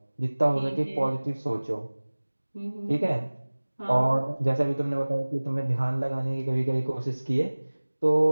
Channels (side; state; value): both; inverted; correlation -1.00